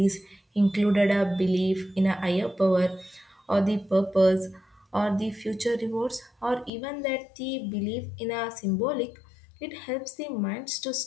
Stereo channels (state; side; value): drops out; right; at 6.7 s